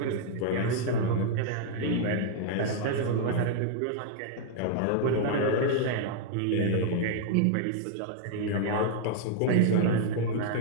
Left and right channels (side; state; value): both; different; correlation -0.01